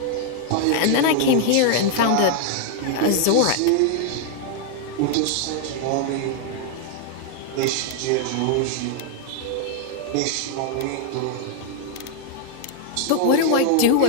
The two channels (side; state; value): both; different; correlation 0.00